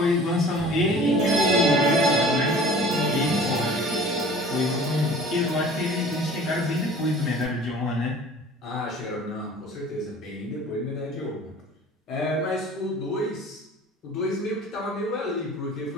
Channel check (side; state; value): both; normal; correlation 0.45